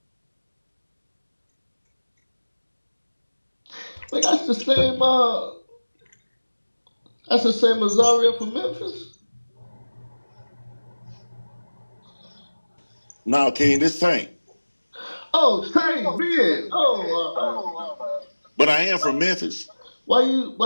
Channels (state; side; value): inverted; both; correlation -1.00